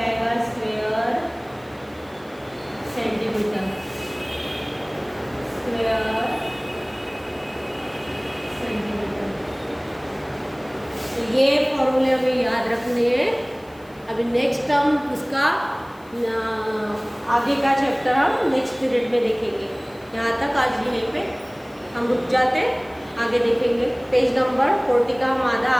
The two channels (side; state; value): left; noise; hiss, 29 dB below the sound